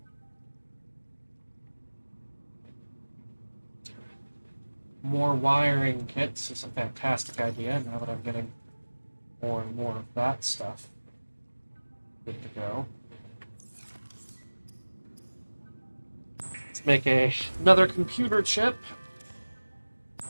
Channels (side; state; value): both; inverted; correlation -1.00